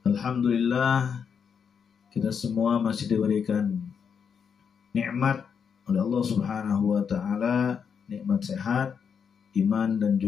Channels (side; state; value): right; quieter; 6.8 dB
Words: Alhamdulillah, kita semua masih diberikan nikmat oleh Allah Subhanahu wa taala, nikmat sehat, iman dan